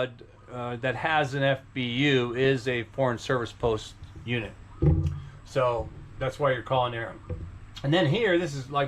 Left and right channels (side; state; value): both; identical; correlation 1.00